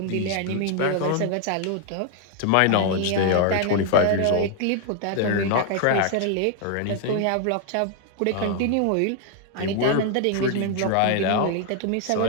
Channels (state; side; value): different; both; correlation 0.00